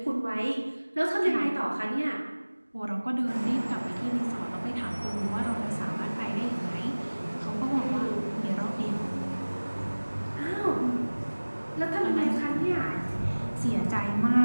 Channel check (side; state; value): both; inverted; correlation -1.00